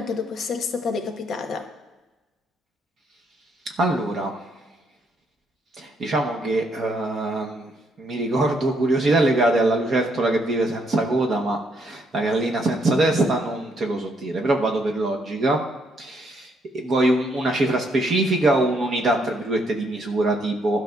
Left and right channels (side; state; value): both; normal; correlation 0.72